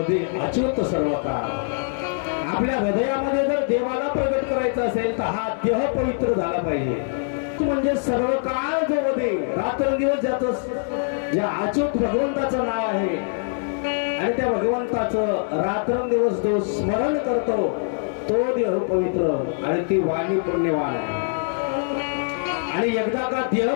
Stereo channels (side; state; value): right; silent; 63 dB below the other